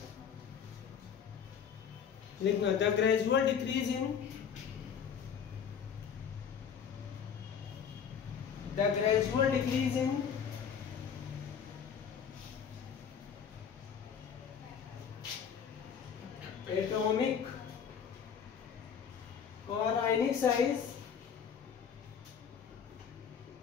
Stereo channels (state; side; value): quieter; right; 7.4 dB